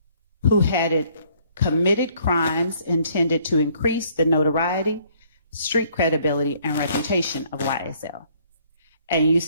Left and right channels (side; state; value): both; inverted; correlation -0.63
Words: Who had committed crimes intended to increase the notoriety, street credibility, and reputation of YSL. And you